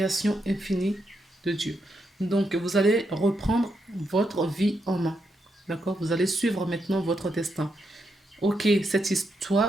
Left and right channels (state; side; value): normal; both; correlation 0.82